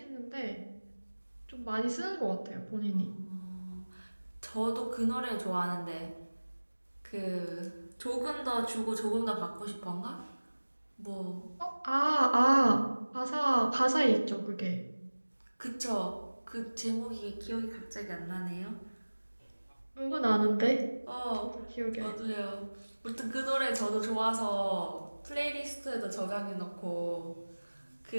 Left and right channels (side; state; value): both; inverted; correlation -1.00